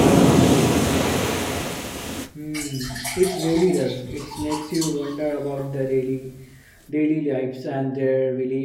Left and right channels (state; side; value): identical; both; correlation 1.00